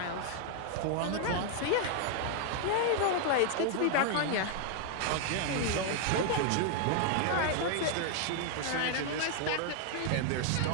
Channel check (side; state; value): both; different; correlation 0.00